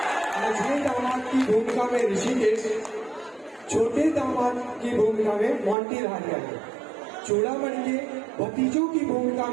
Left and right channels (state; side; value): drops out; left; at 5.8 s